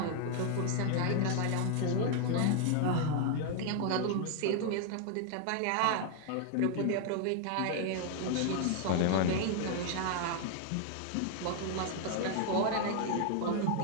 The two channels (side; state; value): both; different; correlation 0.00